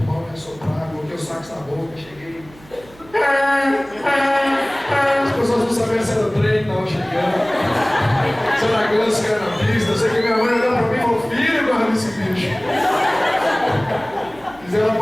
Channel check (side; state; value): right; noise; hum, 24 dB below the sound